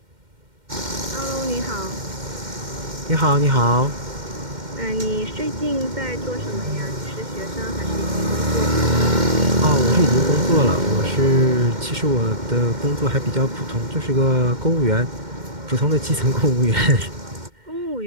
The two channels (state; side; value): late; left; 2.1 ms